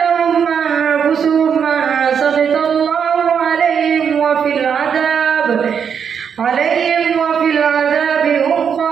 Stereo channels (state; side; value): quieter; left; 7.3 dB